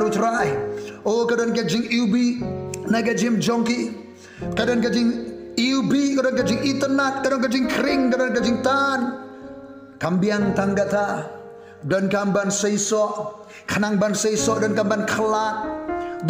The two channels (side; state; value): both; identical; correlation 1.00